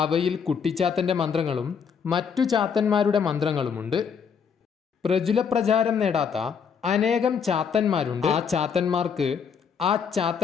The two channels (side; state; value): right; quieter; 6.6 dB